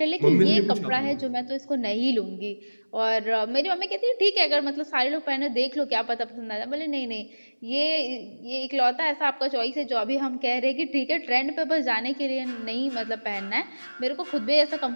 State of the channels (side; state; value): both; inverted; correlation -1.00